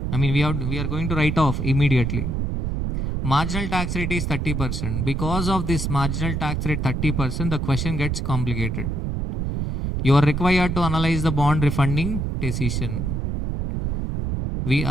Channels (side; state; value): right; noise; rumble, 1 dB below the sound